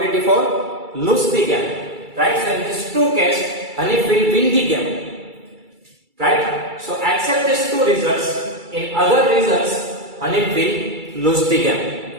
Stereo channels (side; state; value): left; late; 2.3 ms